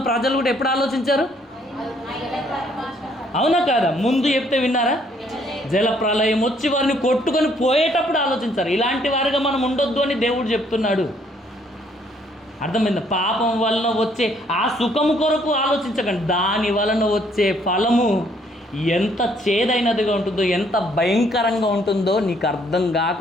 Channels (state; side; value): normal; both; correlation 0.66